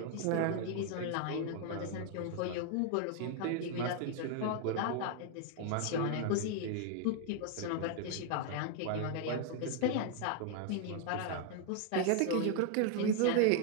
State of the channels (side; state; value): both; different; correlation 0.00